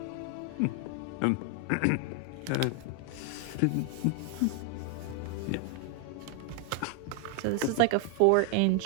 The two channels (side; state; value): both; different; correlation 0.00